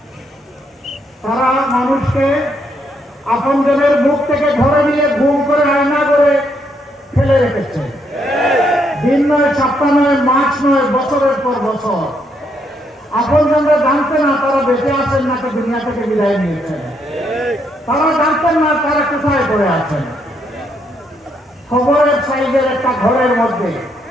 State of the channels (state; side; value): normal; both; correlation 0.75